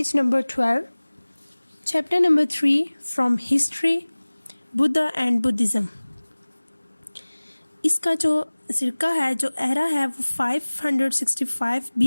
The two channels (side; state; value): both; inverted; correlation -1.00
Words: number 12, chapter number 3 from History, Buddha and Buddhism. इसका जो सिरका है, जो era है, वो 565